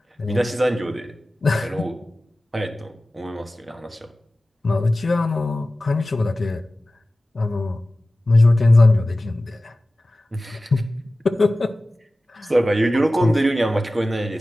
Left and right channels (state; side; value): normal; both; correlation 0.96